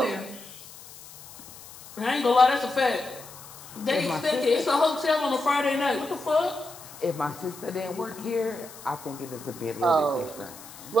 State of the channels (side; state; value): left; noise; hiss, 17 dB below the sound